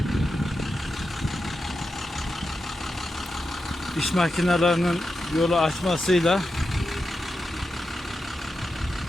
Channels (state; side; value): normal; both; correlation 0.89